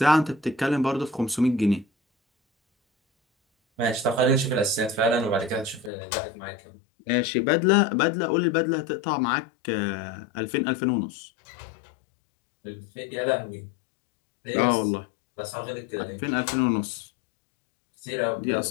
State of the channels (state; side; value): drops out; right; at 5.9 s